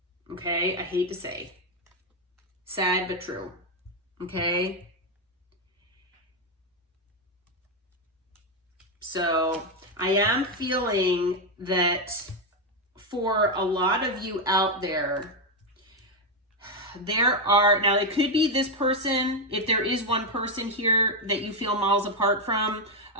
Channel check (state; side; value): normal; both; correlation 0.05